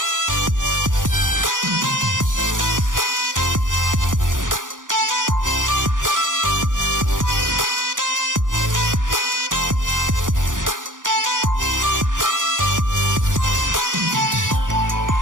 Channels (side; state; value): left; late; 0.88 ms